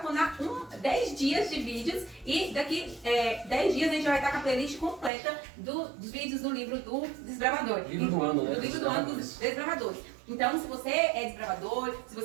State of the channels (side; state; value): left; drops out; at 5.1 s